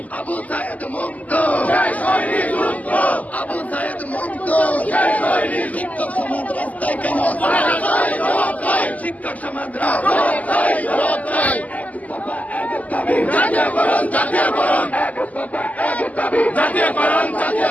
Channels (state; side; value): late; right; 0.075 ms